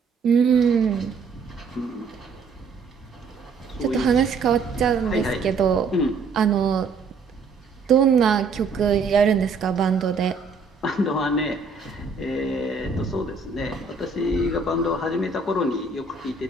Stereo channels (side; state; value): left; quieter; 4.4 dB